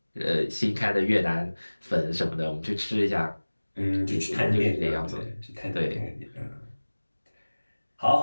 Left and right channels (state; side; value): inverted; both; correlation -1.00